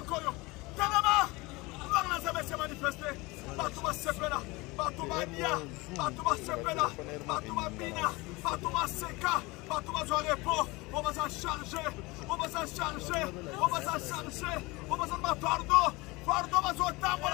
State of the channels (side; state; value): right; quieter; 23.3 dB